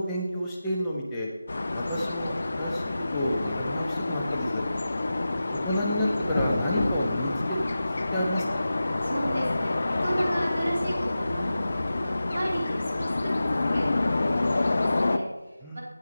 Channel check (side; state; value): both; inverted; correlation -0.94